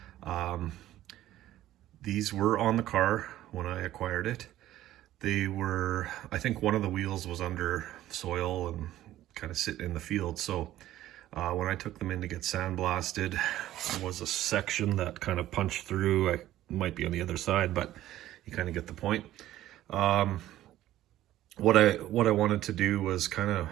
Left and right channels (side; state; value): left; quieter; 14.0 dB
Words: These were on the car when I acquired it. They were, I think one of the wheels was under soil and kind of sitting in the field. So when I took them in to get sandblasted, there was a section that kind of punched through. I might be on the other side, but you kind of get the point. What I wanted to do was kind of,